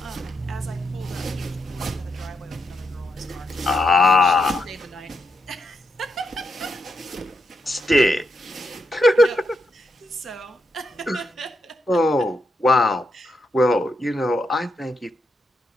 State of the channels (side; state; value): both; normal; correlation 0.82